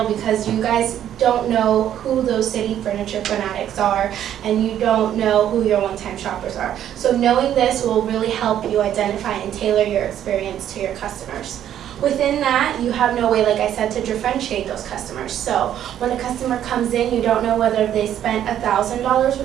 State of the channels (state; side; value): quieter; left; 10.7 dB